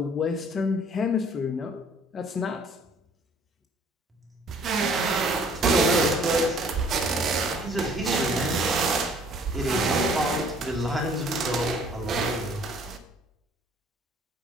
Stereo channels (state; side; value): normal; both; correlation 0.57